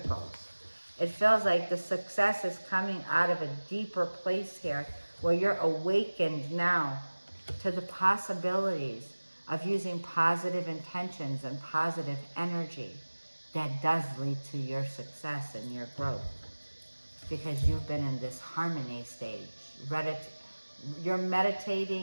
It feels like the success is coming out of a deeper place here where you're awakened now to the possibilities of using positive intentions and positive energy that does lead to your success and your growth. Because you've been in this harmony stage. You're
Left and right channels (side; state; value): both; inverted; correlation -1.00